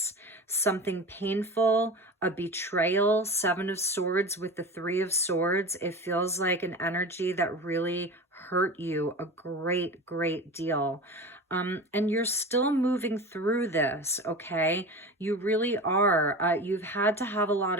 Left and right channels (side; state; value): both; normal; correlation 0.31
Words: Something painful, a betrayal. 7 of Swords with the 3 of Swords. It feels like an energy that really hurt you a great, great deal. And you're still moving through this, okay? You really are. You've had to have a lot